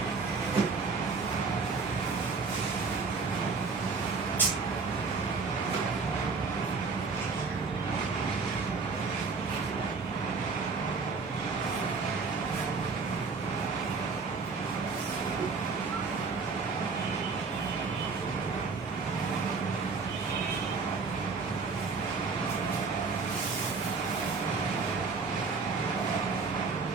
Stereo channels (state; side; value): quieter; left; 4.6 dB